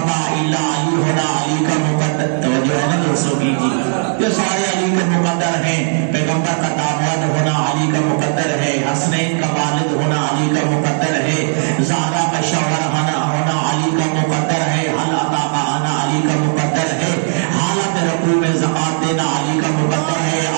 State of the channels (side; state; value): left; silent; 66 dB below the other